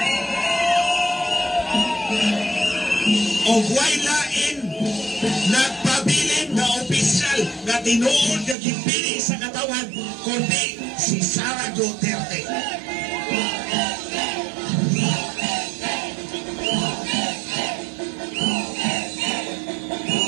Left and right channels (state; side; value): drops out; left; at 8.6 s